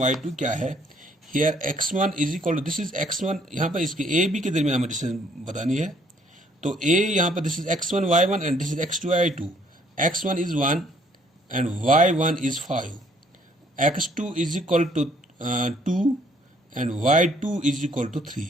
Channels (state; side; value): normal; both; correlation 0.64